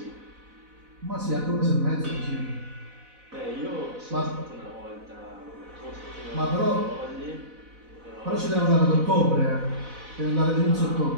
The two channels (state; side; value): late; left; 4.0 ms